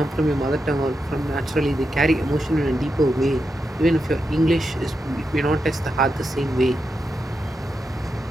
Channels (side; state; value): both; normal; correlation 0.87